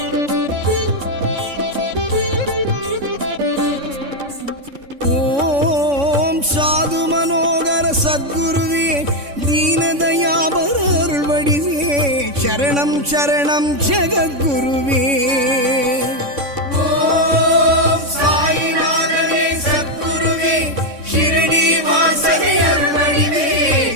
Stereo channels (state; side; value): late; left; 3.6 ms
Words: சத்குருவே, தீனதயாபர அருள் வடிவே, சரணம் சரணம் ஜெகத்குருவே. ஓம் சாயிநாதனே சத்குருவே, ஷிரடி வாசனை அருள் வடிவே,